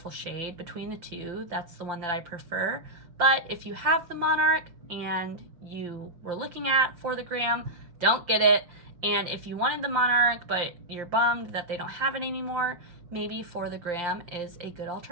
shade. Between the two, that's the one that I prefer. But if you have the Monarch and you were looking at for the gram, don't get it. And if you wanted the Monarch, but you're bummed that they don't have it anymore, maybe For the Gram is a good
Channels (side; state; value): left; late; 5.7 ms